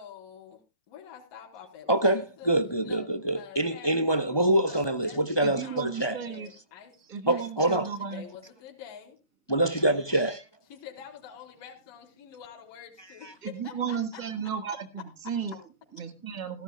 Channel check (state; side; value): late; right; 1.2 ms